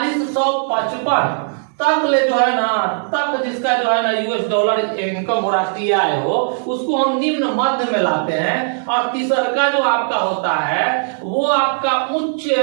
तक ले जो है ना, तक जिसका जो है ना यूएस डॉलर इनकम हो, राष्ट्रीय आय हो, उसको हम निम्न मध्य में लाते हैं। और तीसरा जो आपका होता है वो आपका उच्च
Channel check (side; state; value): left; silent; digital silence